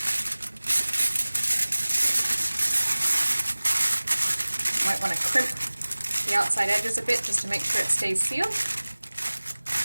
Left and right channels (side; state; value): both; inverted; correlation -1.00